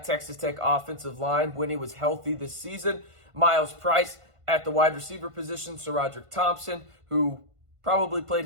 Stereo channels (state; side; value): late; left; 1.5 ms